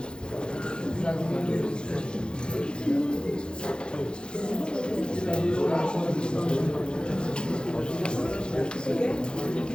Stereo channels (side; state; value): right; late; 0.050 ms